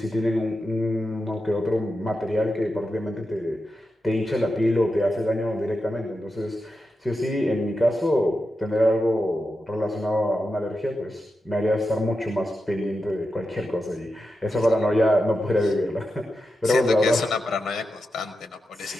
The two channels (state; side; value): normal; both; correlation 0.89